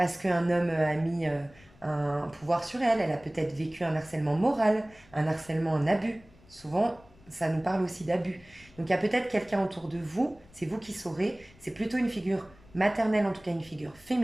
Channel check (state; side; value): noise; left; rumble, 26 dB below the sound